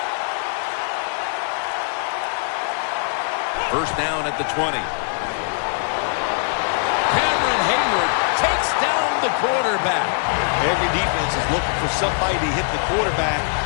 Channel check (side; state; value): right; silent; digital silence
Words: First down at the 20. Cameron Hayward takes down the quarterback. Every defense is looking for somebody to hit the quarterback,